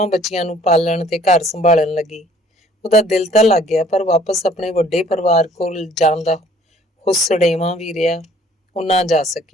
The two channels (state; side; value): normal; both; correlation 0.57